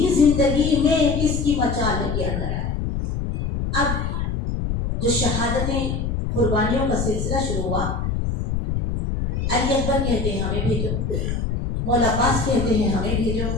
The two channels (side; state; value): left; noise; rumble, 1 dB below the sound